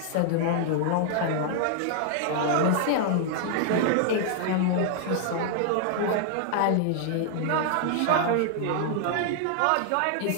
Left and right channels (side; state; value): both; different; correlation 0.00